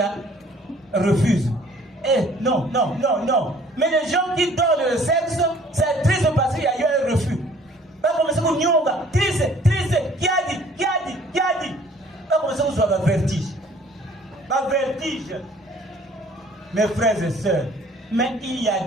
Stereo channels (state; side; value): normal; both; correlation 0.55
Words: refusent. Non. Mais les gens qui donnent le sexe, c'est triste parce qu'il y a eu un refus. Pas comme ça, vous nyonga, triste, qui a dit. Pas comme ça, vous avez un vertige. Pas vertige. Mes frères et sœurs, mais il y a